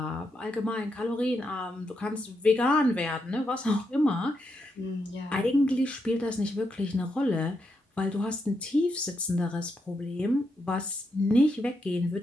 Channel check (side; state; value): both; normal; correlation 0.82